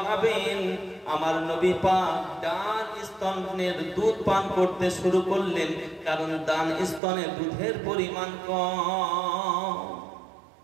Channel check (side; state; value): left; drops out; at 7.0 s